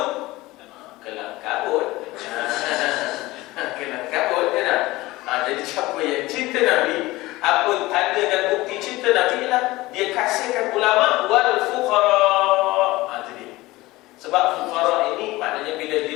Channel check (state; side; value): quieter; right; 19.4 dB